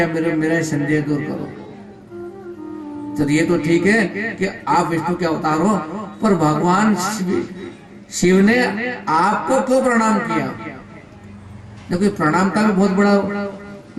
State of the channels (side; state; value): both; identical; correlation 1.00